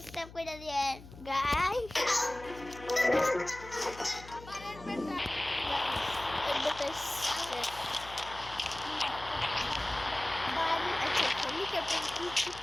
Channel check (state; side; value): noise; left; hum, 17 dB below the sound